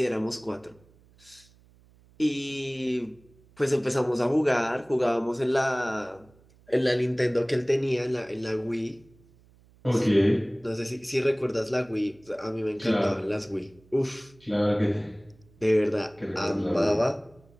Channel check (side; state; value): right; noise; hum, 29 dB below the sound